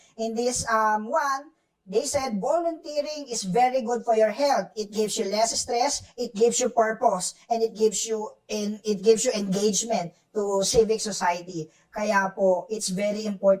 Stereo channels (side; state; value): both; identical; correlation 1.00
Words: In this one, they said volunteering is very good for your health. It gives you less stress, it gives you purpose, and it gives you engagement to civic society. Kaya po, it's very